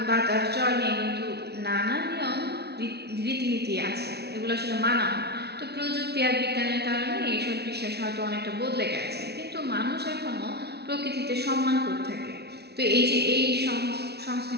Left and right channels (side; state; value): left; late; 0.48 ms